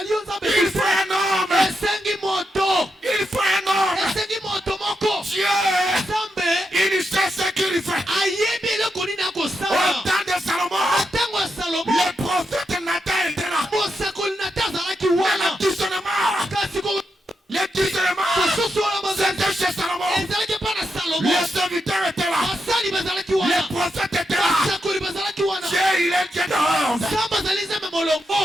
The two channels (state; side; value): normal; both; correlation 0.85